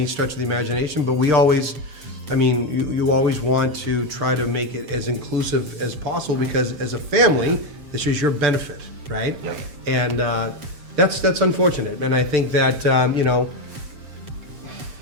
stretch of the imagination, but we always, you always want to try to make it as inclusive as possible, because as a family, this is your benefit, right? Yep. And that's unfortunate, and I think that,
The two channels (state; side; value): late; left; 7.5 ms